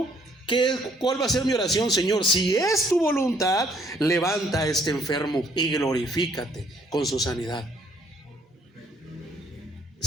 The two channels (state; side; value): normal; both; correlation 0.64